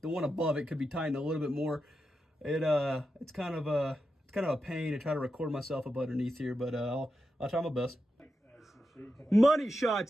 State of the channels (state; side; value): normal; both; correlation 0.88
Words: one above it could be tightened a little bit more. It's kind of a pain to try to record myself up underneath here, but I'll try my best. Money shots,